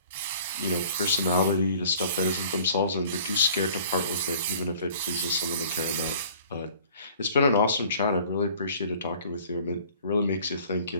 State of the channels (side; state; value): both; inverted; correlation -0.50